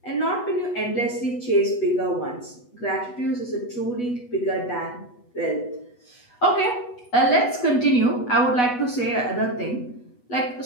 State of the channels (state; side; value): late; right; 8.1 ms